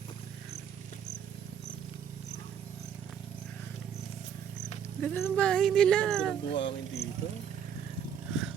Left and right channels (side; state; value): left; quieter; 8.3 dB